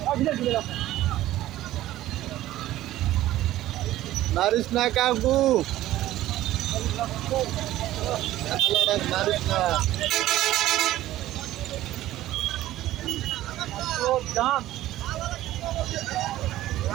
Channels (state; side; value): quieter; left; 14.7 dB